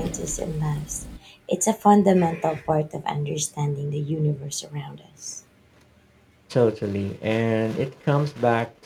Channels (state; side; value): identical; both; correlation 1.00